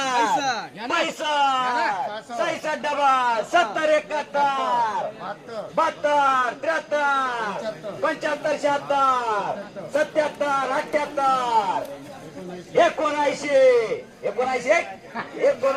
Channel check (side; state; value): both; identical; correlation 1.00